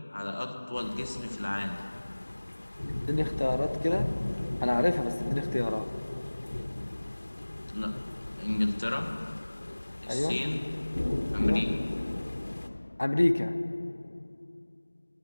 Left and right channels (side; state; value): both; inverted; correlation -1.00